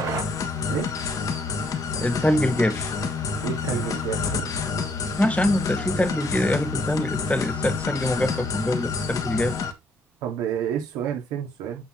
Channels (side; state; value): both; normal; correlation 0.69